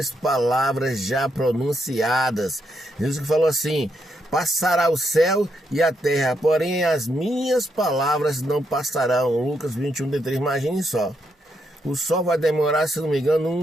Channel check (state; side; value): normal; both; correlation 0.79